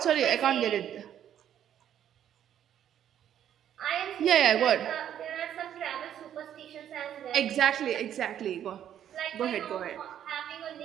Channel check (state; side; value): quieter; left; 10.3 dB